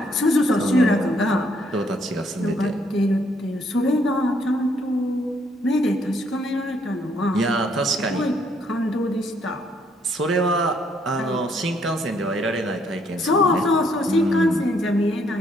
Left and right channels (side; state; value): both; normal; correlation 0.69